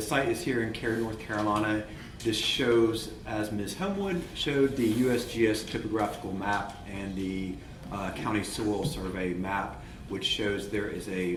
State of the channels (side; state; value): both; identical; correlation 1.00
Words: site is here in Cary, North Carolina. This shows, as Ms. Homewood showed, the USGS topographical map and the county soil survey map, which shows there is a